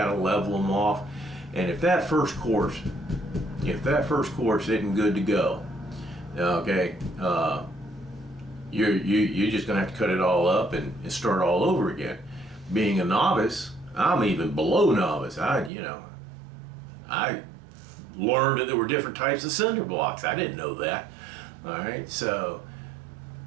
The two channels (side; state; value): left; drops out; at 15.7 s